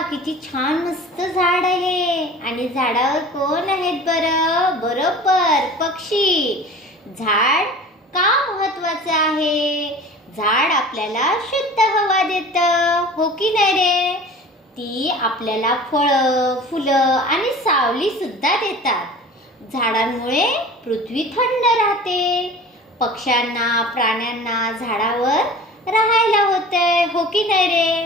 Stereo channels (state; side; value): normal; both; correlation 0.40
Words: किती छान मस्त झाड आहे. आणि झाडावर कोण आहेत बरं? बरोबर, पक्षी. झाड का महत्वाचं आहे? झाड आपल्याला शुद्ध हवा देतं, हो की नाही रे? ती आपल्याला फळं, फुलं आणि सावली सुद्धा देतात. झाडांमुळे पृथ्वी थंड राहते. पक्ष्यांना, प्राण्यांना झाडावर राहायला होतंय, हो की नाही रे?